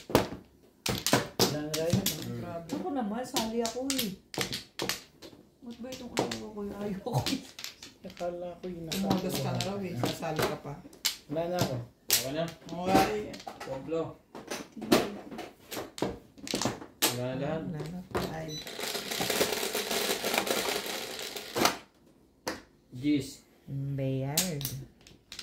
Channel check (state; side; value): identical; both; correlation 1.00